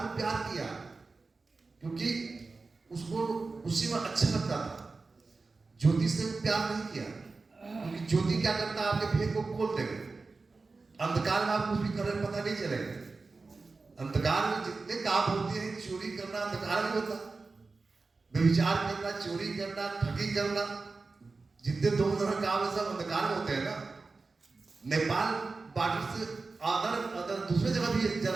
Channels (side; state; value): left; quieter; 3.9 dB